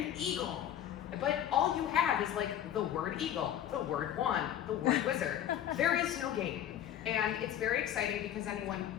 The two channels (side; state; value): right; quieter; 10.7 dB